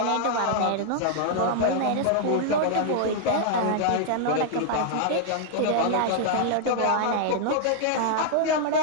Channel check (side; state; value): both; different; correlation -0.01